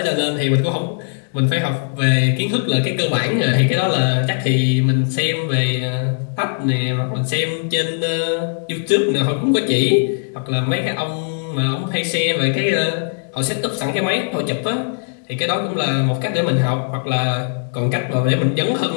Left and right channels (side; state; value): right; silent; digital silence